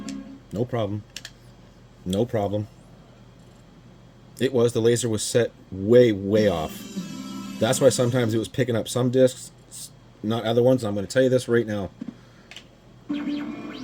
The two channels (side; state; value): both; identical; correlation 1.00